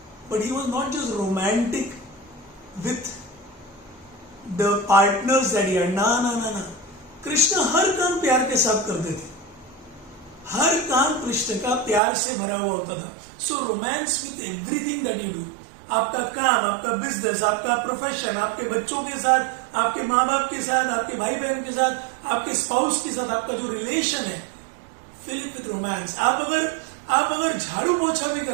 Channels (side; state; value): left; drops out; at 12.0 s